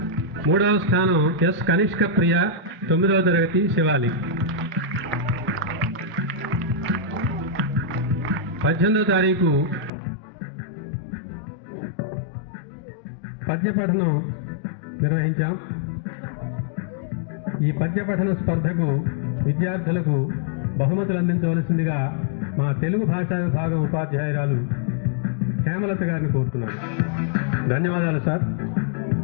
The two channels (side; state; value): right; drops out; at 9.9 s